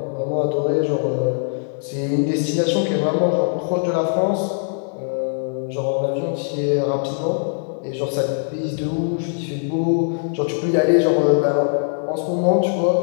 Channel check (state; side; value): silent; right; digital silence